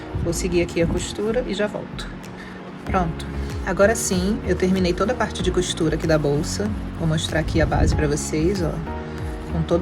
Vou seguir aqui a costura e já volto. Pronto. Agora sim, eu terminei toda a parte de costura aqui da bolsa. Vou mostrar aqui a base pra vocês, ó, com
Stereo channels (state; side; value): identical; both; correlation 1.00